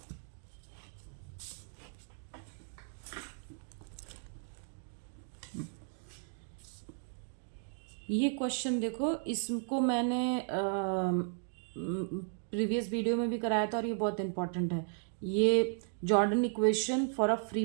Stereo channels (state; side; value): silent; left; 54 dB below the other